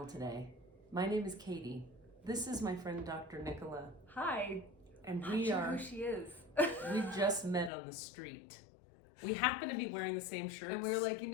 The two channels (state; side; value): drops out; right; at 7.7 s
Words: today. My name is Katie. This is my friend Dr. Nicola. Hi. And I'm not sure who she is. We just met on the street. We happen to be wearing the same shirts. And we were like,